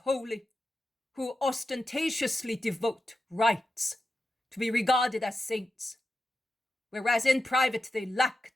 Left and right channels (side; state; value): both; normal; correlation 0.90